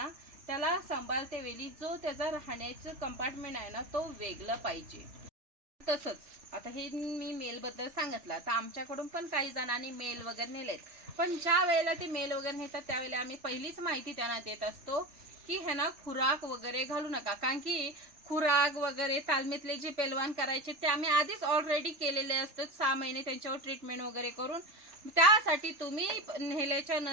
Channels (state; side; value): late; left; 3.4 ms